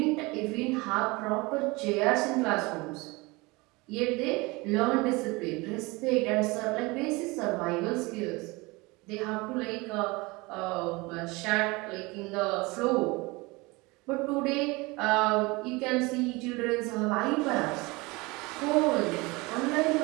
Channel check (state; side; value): quieter; left; 24.2 dB